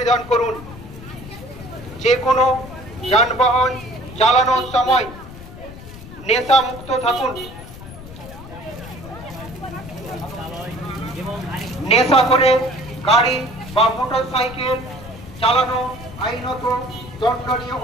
করুন। যে কোনো যানবাহন চালানোর সময় নেশা মুক্ত থাকুন। নেশা করে গাড়ি বা মোটর সাইকেল চালানো আইনত দণ্ডনীয়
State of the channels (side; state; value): left; noise; rumble, 15 dB below the sound